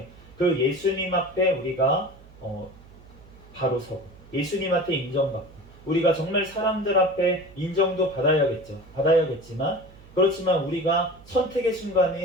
그 예수님 앞에 우리가 바로 서고 예수님한테 인정받고, 우리가 정말 사람들 앞에 인정도 받아야겠지만 그렇지만 우리가 선택의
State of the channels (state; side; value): noise; right; hum, 22 dB below the sound